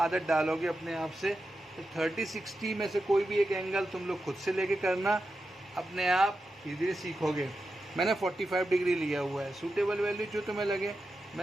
डालोगे अपने आप से, तो 30 60 में से कोई भी एक एंगल तुम लोग खुद से लेके करना, अपने आप धीरे धीरे सीखोगे। मैंने 45 डिग्री लिया हुआ है, सूटेबल वैल्यू जो तुम्हें लगे,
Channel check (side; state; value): both; normal; correlation 0.90